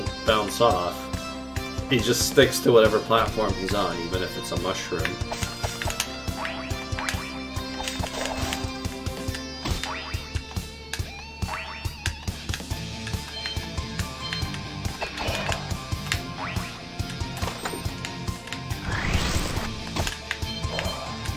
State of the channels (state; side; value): identical; both; correlation 1.00